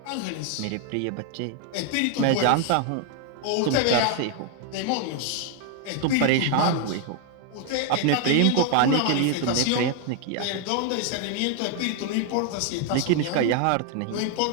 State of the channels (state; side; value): different; both; correlation 0.00